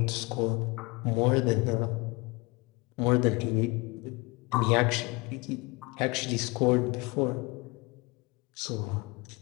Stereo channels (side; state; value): right; quieter; 25.7 dB